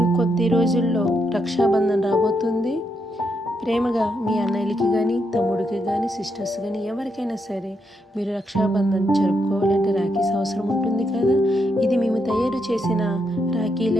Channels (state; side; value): normal; both; correlation 0.80